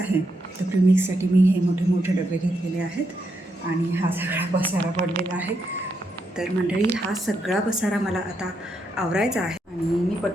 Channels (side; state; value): both; normal; correlation 0.80